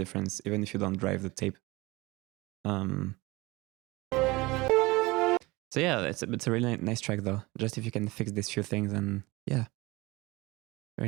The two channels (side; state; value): left; quieter; 22.4 dB